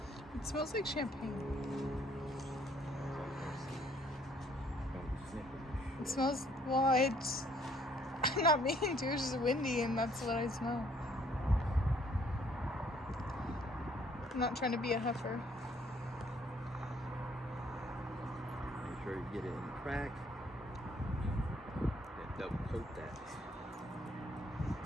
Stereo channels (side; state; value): both; normal; correlation 0.63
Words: It smells like champagne. It smells, well, it's I'm not meaning to, it's just windy and that's what I smell. I'm not trying to be a heifer. get it in the crack. Then double coat that.